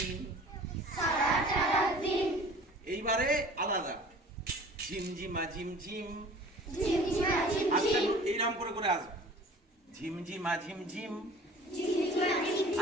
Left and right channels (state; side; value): normal; both; correlation 0.46